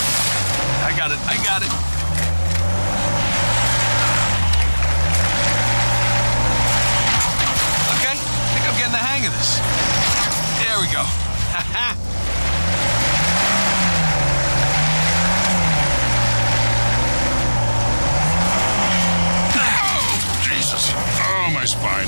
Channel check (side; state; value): both; inverted; correlation -1.00